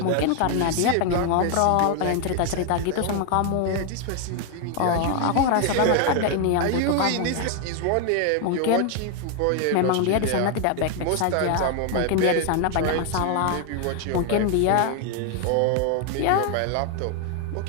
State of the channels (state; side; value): different; both; correlation 0.00